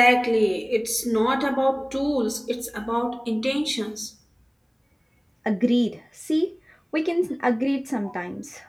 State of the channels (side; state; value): both; identical; correlation 1.00